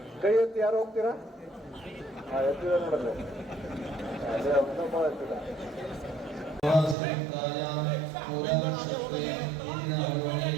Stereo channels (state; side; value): drops out; left; at 7.0 s